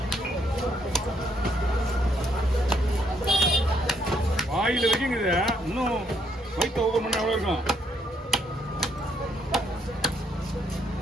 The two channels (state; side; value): normal; both; correlation 0.71